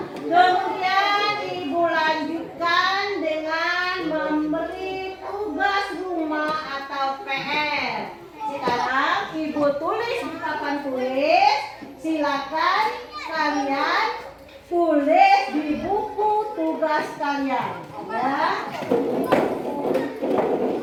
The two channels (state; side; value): identical; both; correlation 1.00